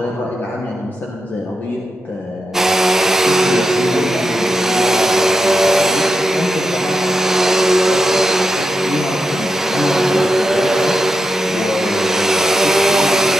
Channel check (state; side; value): normal; both; correlation 0.88